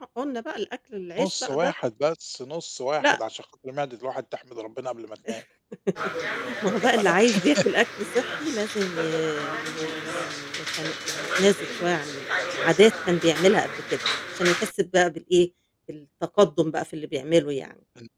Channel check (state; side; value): identical; both; correlation 1.00